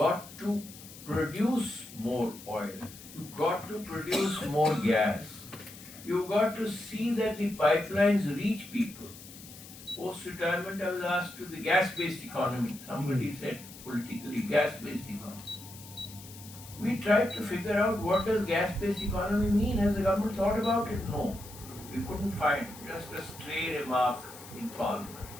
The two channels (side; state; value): left; noise; hiss, 17 dB below the sound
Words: to produce more oil, you've got to produce more gas, you've got to see that the pipelines reach people. Post-retirement, I was asked to the gas-based economy. Somebody said politically, gas-based economy. We tried to figure out what does gas-based economy mean. Has the government thought about it? No. We couldn't find just a stray remark in Parliament